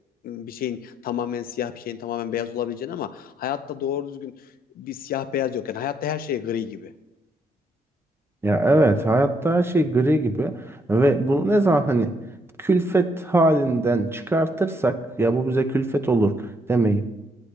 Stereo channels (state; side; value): normal; both; correlation 0.74